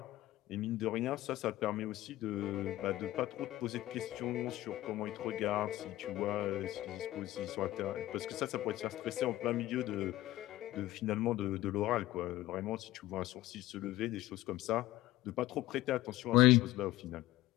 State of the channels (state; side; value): quieter; right; 16.2 dB